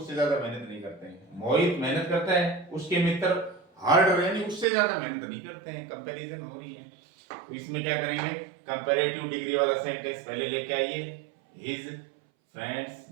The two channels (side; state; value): left; drops out; at 4.7 s